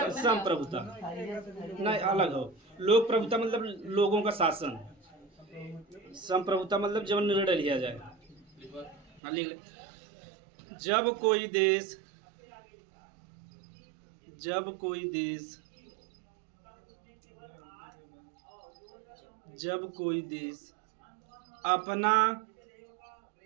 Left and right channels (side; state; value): left; drops out; at 9.2 s